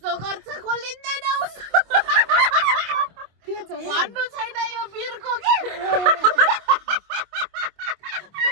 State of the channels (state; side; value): late; left; 25 ms